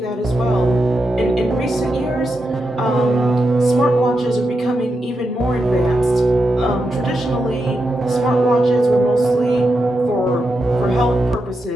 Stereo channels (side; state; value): both; normal; correlation 0.86